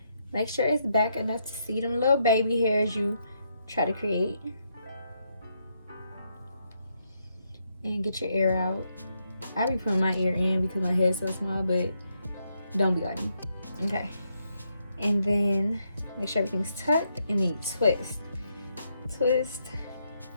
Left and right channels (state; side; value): inverted; both; correlation -0.78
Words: Make sure it's back enough to see them little baby hairs you try to create. And get your ear out. I be putting my ear in because my head's so small, but don't be like me. Okay. And then make sure everything's tucked, and then you twist. Twist,